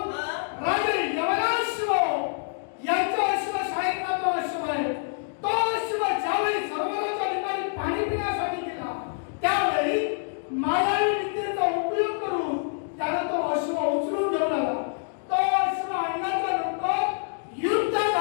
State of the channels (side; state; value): right; silent; digital silence